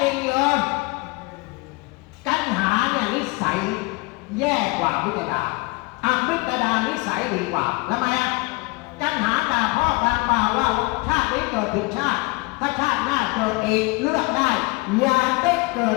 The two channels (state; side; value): quieter; right; 26.2 dB